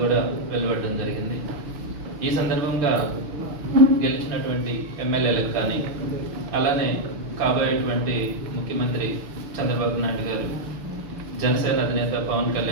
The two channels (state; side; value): late; left; 6.2 ms